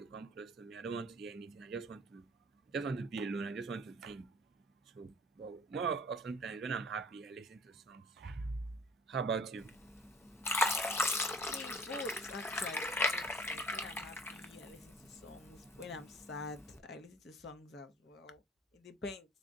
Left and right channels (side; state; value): both; normal; correlation 0.49